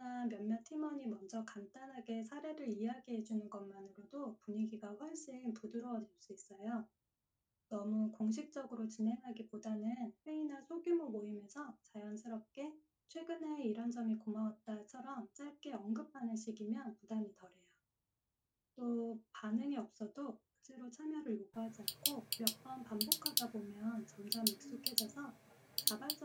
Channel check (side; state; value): both; identical; correlation 1.00